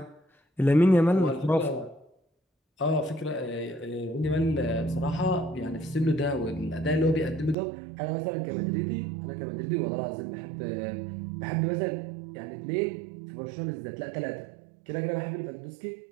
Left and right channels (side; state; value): left; drops out; at 7.6 s